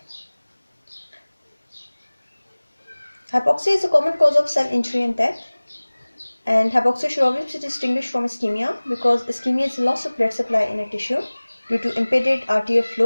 Hypoxia is a common cause of cell injury and death, and hypoxia should always be distinguished from ischemia because ischemia is loss of blood supply in a tissue due to impeded arterial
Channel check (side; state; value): both; inverted; correlation -1.00